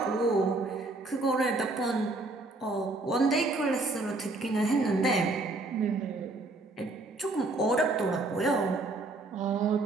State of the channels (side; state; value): left; quieter; 3.1 dB